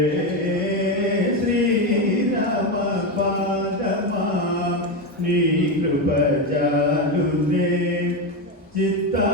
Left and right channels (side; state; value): both; normal; correlation 0.12